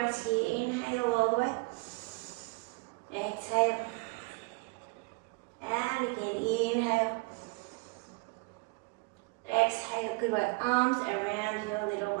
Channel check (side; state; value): left; quieter; 28.4 dB